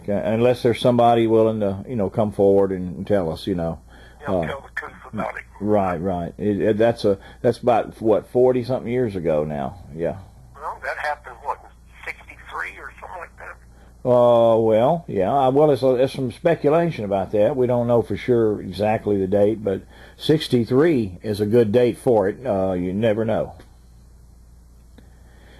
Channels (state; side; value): identical; both; correlation 1.00